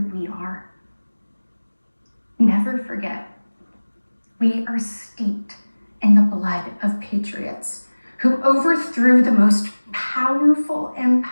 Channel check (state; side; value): inverted; both; correlation -1.00